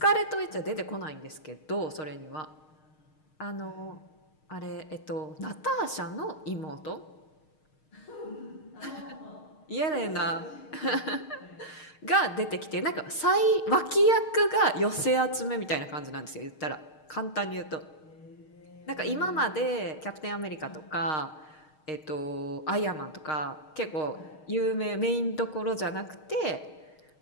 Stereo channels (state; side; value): late; right; 6.5 ms